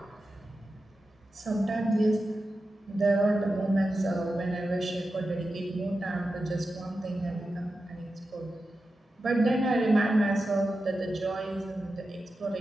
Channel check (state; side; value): normal; both; correlation 0.91